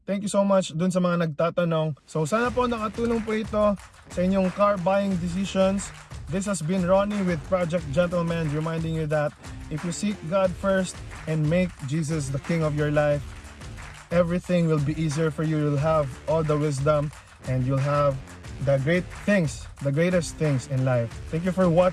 thank you so much dun sa mga nagtatanong. So sana po nakatulong po ito sa inyong car buying decisions. This has been Ronnie with Project Gentleman, reminding you that if you seek God first and make Jesus the King of your life, everything will be easier for you. You'll have all the wisdom and you'll have the great things, the greatest things in life. Thank you for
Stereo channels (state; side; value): identical; both; correlation 1.00